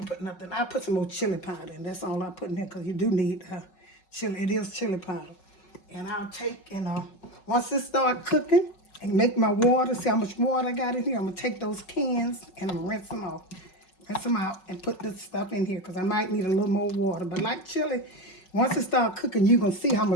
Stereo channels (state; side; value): late; right; 5.4 ms